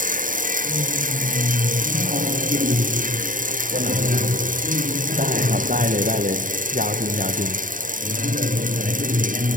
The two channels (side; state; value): left; late; 0.39 ms